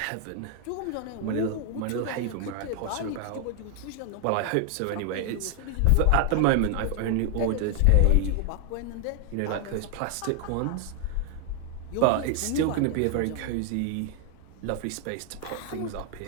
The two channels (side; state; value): both; different; correlation 0.00